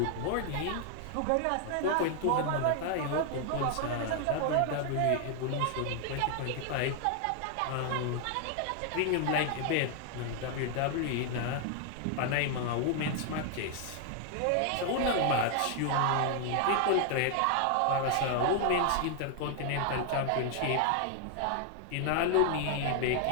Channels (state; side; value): different; both; correlation 0.00